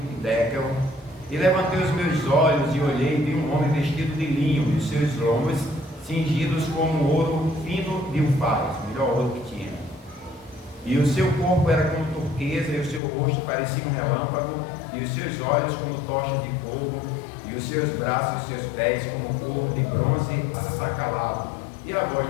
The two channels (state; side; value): drops out; right; at 13.0 s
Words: Dekel, e levantei os meus olhos e olhei, e vi um homem vestido de linho, e os seus lombos cingidos como ouro fino de Ufaz, o melhor ouro que tinha. E o seu corpo era como turquesa, e o seu rosto parecia um relâmpago, e os seus olhos como tochas de fogo, e os seus braços e os seus pés como couro de bronze assacalado, e a voz